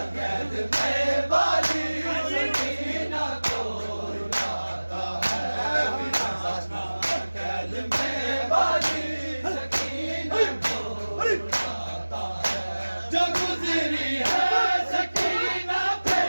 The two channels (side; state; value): both; inverted; correlation -1.00